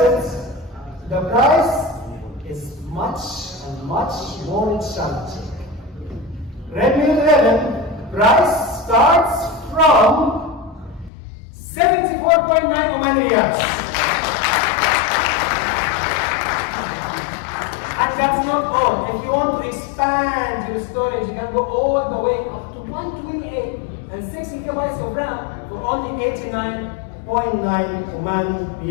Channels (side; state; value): right; drops out; at 11.1 s